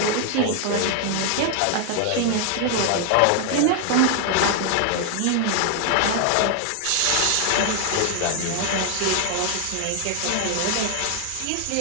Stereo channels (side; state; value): both; different; correlation 0.00